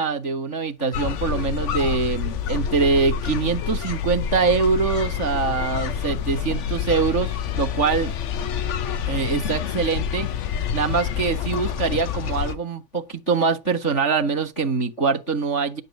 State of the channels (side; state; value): right; late; 3.5 ms